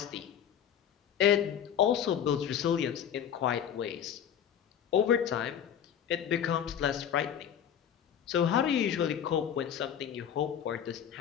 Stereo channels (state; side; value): quieter; right; 9.0 dB